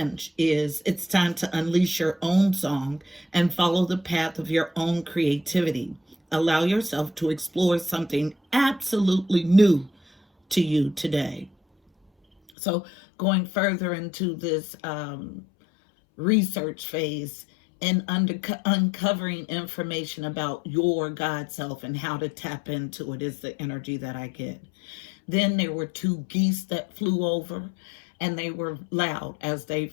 is, it's time to unleash your own song and follow the path of your own creativity. Allow yourself to explore something absolutely new to you today. So going further into this research phase and uncovering information about your God self and how to tap into it is the energy that I get. Then there were two geese that flew over, and they were loud as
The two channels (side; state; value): right; drops out; at 12.5 s